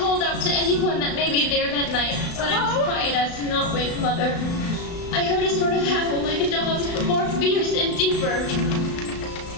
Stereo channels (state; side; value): late; right; 35 ms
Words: out to anyone that may be there that night, but I was quiet as to not wake Mother. I heard a sort of howl like a dog's, but more fierce and deeper.